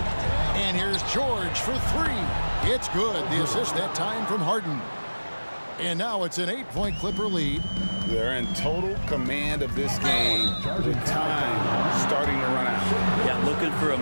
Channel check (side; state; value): both; inverted; correlation -1.00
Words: And here's George for three. It's good. The assist that time from Harden. And now it's an 8-point Clipper lead. They're in total command of this game with time starting to run out. Yeah, looking for a